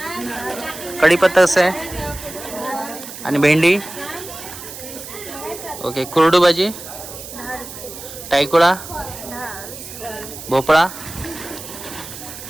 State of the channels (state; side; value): noise; right; hiss, 12 dB below the sound